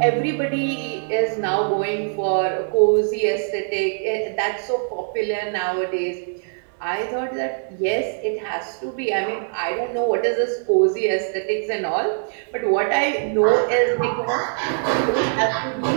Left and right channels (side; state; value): left; silent; digital silence